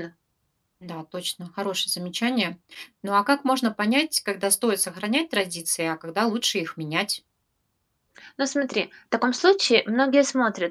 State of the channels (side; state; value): both; identical; correlation 1.00